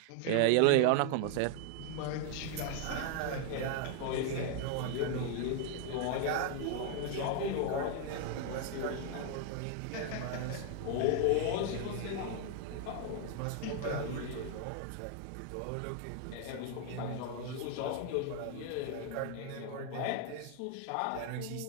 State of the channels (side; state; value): both; different; correlation 0.00